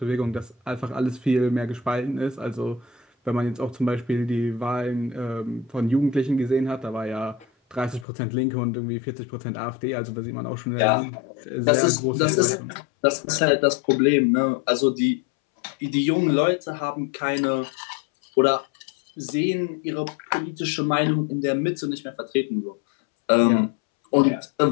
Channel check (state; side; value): drops out; right; at 8.1 s